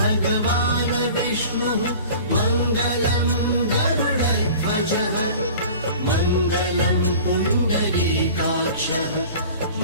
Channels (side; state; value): both; inverted; correlation -0.41